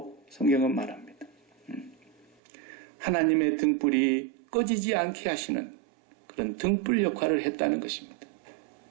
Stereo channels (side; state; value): left; drops out; at 2.2 s